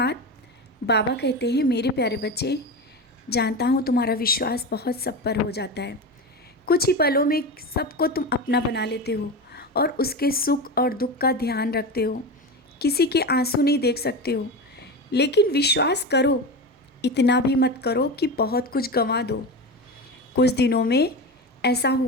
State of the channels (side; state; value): both; normal; correlation 0.23